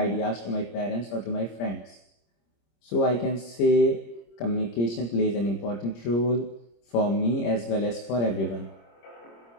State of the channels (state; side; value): late; right; 26 ms